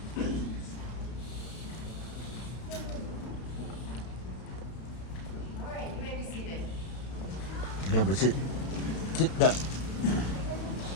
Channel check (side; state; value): right; late; 32 ms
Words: All right, you may be seated. Remember, sit down.